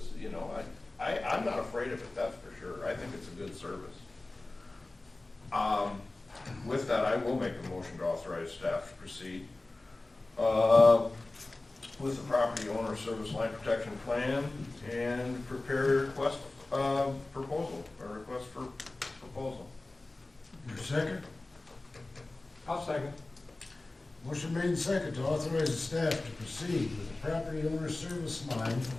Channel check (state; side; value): quieter; right; 3.0 dB